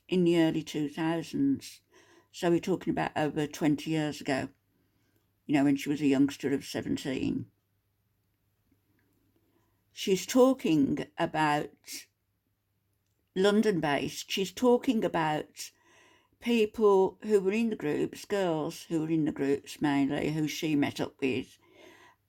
in the early 2000s. So we're talking about over 20 years ago, when she was a youngster of 17. She's talking about London-based. She's talking about people who were in the groups, girls who were in the groups mainly, who she met up with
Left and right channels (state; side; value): identical; both; correlation 1.00